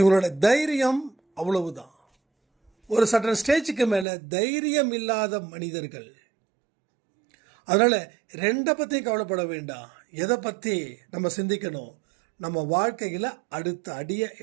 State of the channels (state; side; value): drops out; left; at 4.0 s